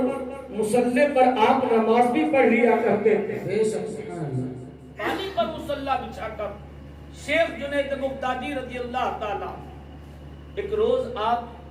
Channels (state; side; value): identical; both; correlation 1.00